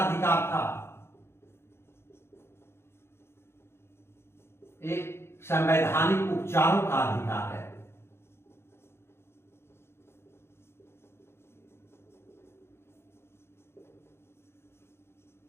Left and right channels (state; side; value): late; right; 0.12 ms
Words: था। एक संवैधानिक उपचारों का अधिकार है।